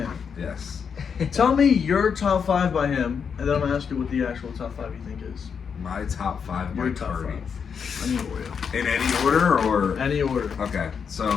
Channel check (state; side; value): quieter; right; 6.6 dB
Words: Yes. Tell me your top 5 by him, and then I'm gonna ask you what the actual top 5 you think is. My top 5 by Your top Cardi. 5. I need Oreo. In any order or? Any order. Okay,